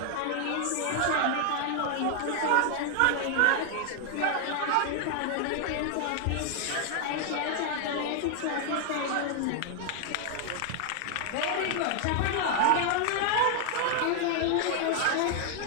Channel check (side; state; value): both; different; correlation 0.00